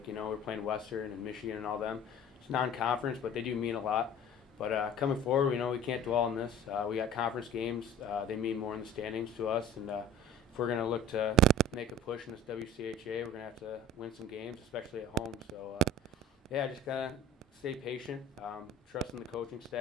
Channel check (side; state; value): both; normal; correlation 0.44